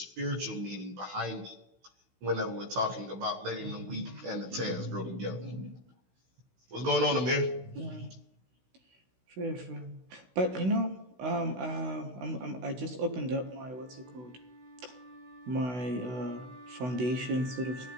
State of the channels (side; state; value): left; late; 16 ms